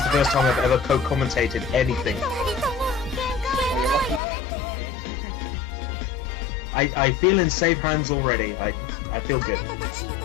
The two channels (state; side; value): drops out; right; at 4.2 s